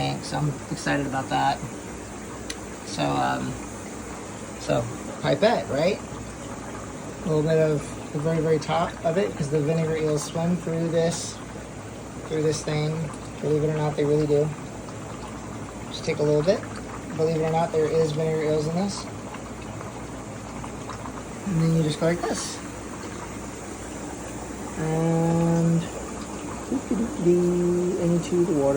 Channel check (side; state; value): both; identical; correlation 1.00